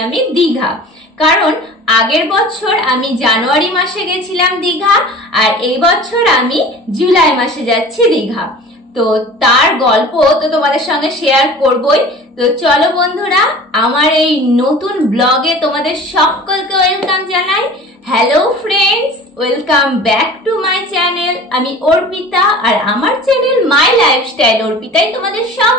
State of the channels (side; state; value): both; normal; correlation 0.41